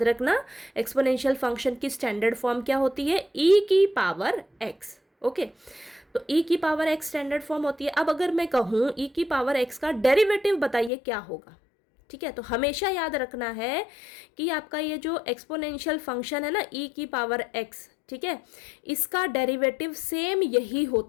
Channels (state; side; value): drops out; right; at 10.9 s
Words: रखना एक्सपोनेंशियल फंक्शन की स्टैंडर्ड फॉर्म क्या होती है? e की पावर x। ओके, तो e की पावर x स्टैंडर्ड फॉर्म होती है। अब अगर मैं कहूँ e की पावर x का डेरिवेटिव बताइए क्या होगा। ठीक है, तो हमेशा याद रखना है कि आपका ये जो एक्सपोनेंशियल फंक्शन है ना, e की पावर x, ठीक है, इसका डेरिवेटिव सेम यही